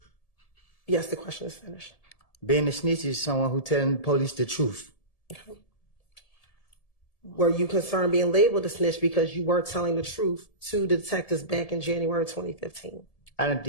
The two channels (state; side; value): late; right; 1.7 ms